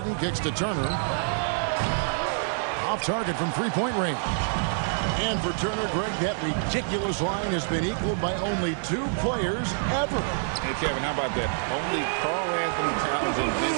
kicks to Turner. Off target from three-point range. And for Turner, Greg, that ridiculous line has been equaled by only 2 players ever. Hey, Kevin, how about that? Only Karl Anthony Towns and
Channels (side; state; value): left; silent; 60 dB below the other